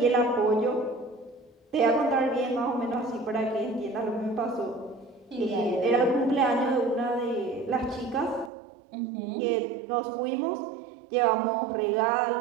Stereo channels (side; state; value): left; drops out; at 8.5 s